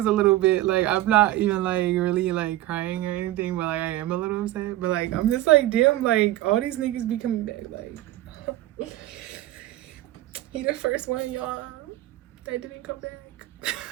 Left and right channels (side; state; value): left; quieter; 15.4 dB